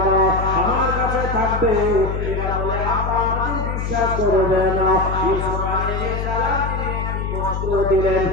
না, আমার কাছে থাকবে। এরা বলে, আব্বা আমাদের বিশ্বাস করবে না। ইউসুফ আলাইহিস সালাম তিনি একটি বস্ত্র দিলেন,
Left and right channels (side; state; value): left; noise; hum, 3 dB below the sound